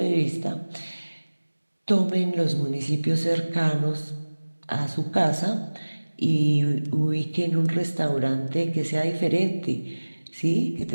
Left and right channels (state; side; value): inverted; both; correlation -1.00